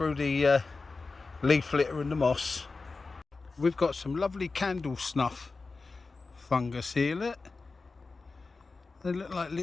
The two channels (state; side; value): quieter; right; 4.0 dB